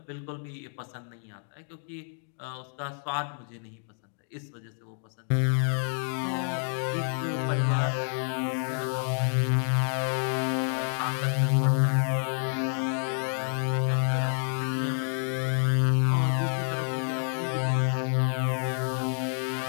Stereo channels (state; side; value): silent; right; 59 dB below the other